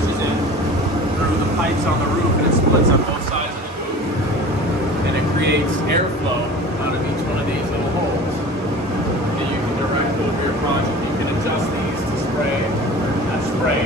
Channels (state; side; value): normal; both; correlation 0.39